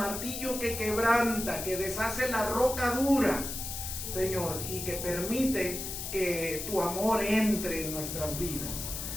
que quebranta, que deshace la roca dura, Señor, y que permite que tu amor entre en nuestras vidas.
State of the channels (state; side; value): noise; left; hiss, 6 dB below the sound